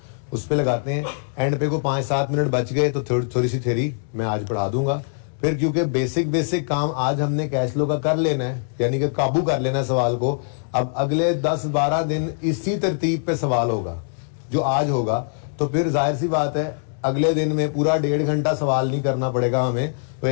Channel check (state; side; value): silent; right; digital silence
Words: उस पे लगाते हैं। एंड पे को 5-7 मिनट बच गए तो थोड़ी सी थ्योरी मैं आज पढ़ा दूंगा। फिर क्योंकि बेसिक काम आज हमने कैश फ्लो का कर लेना है, यानी कि काबू कर लेना है सवाल को। अब अगले 10-12 दिन इसी तरतीब पे सवाल होगा जो आज होगा, तो फिर जाहिर सी बात है अगले दिन में पूरा 1.5 घंटा सवाल नहीं करना पड़ेगा हमें, तो